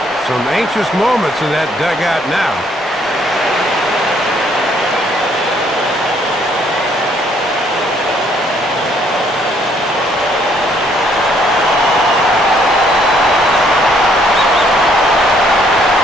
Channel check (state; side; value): normal; both; correlation 0.66